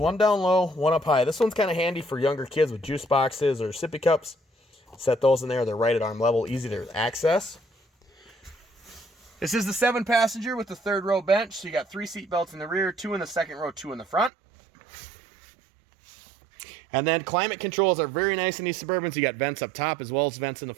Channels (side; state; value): left; drops out; at 14.3 s